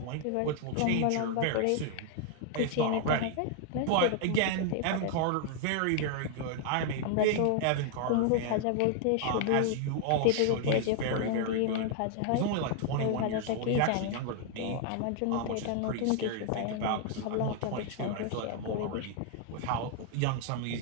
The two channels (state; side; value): different; both; correlation 0.00